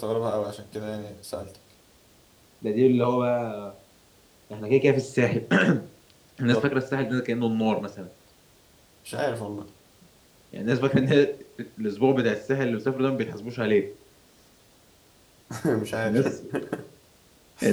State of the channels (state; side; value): identical; both; correlation 1.00